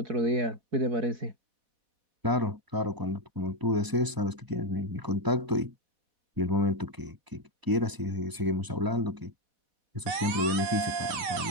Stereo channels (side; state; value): left; late; 4.1 ms